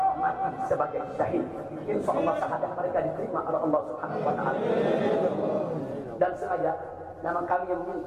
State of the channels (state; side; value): identical; both; correlation 1.00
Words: mati sebagai syahid. Insya Allah syahadat mereka diterima oleh Allah Subhanahu wa Ta'ala. Dan sengaja memang kami yang